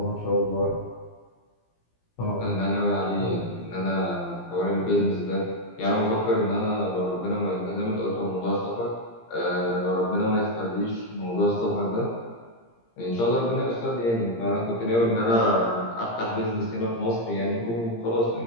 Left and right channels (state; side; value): late; right; 17 ms